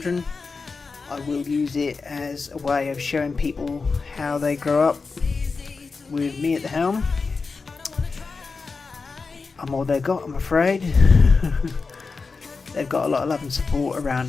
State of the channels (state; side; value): quieter; right; 4.5 dB